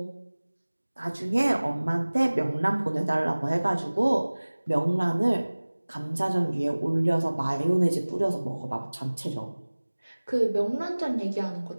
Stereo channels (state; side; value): inverted; both; correlation -1.00